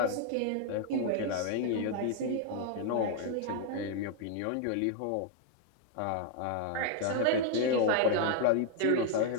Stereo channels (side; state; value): both; different; correlation 0.00